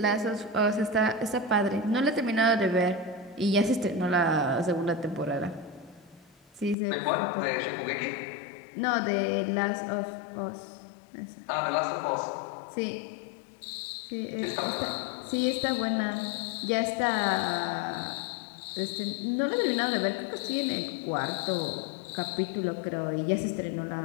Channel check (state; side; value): drops out; right; at 6.8 s